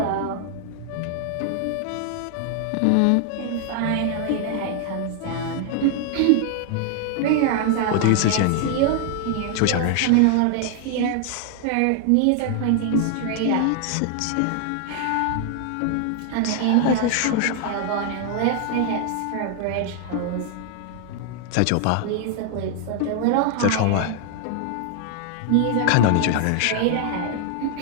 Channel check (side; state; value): both; different; correlation 0.00